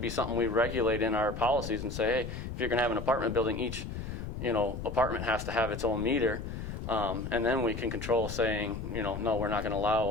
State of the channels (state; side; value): noise; left; rumble, 6 dB below the sound